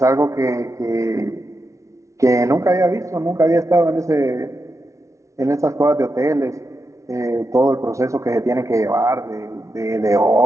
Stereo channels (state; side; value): late; left; 0.14 ms